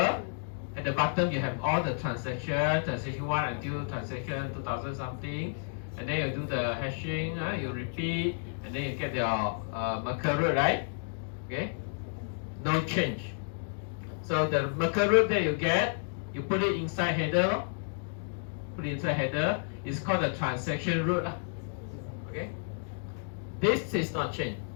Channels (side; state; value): right; silent; digital silence